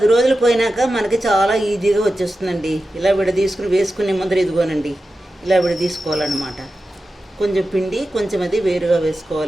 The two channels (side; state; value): both; normal; correlation 0.92